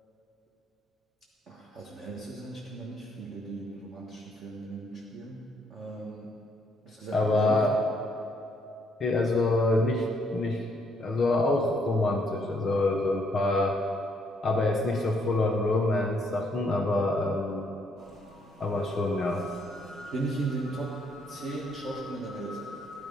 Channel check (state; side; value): normal; both; correlation 0.71